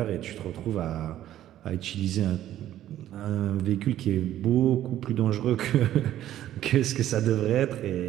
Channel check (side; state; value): left; quieter; 12.5 dB